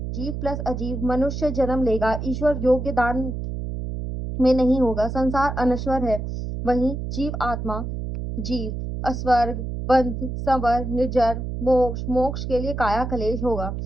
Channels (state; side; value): noise; right; hum, 5 dB below the sound